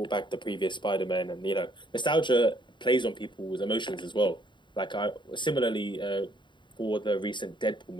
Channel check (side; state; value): right; late; 0.23 ms